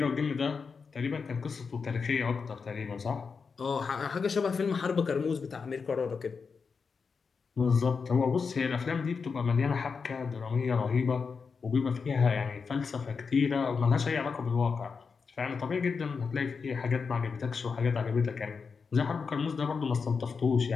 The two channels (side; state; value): right; quieter; 5.3 dB